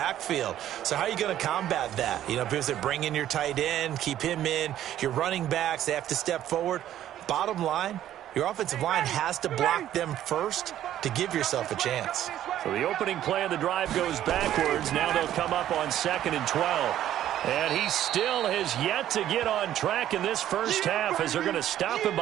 So how are you going to combat that? You know, because they bring in your tight end, keep him in. Your running backs, they have to step forward. Bottom line, your offensive line has to block them first to give yourself a chance. So the opening play of the drive goes backwards. Now they'll come up on 2nd and 12. And he still has yet to get on track in this first half as they're going to stop him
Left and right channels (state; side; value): quieter; left; 12.0 dB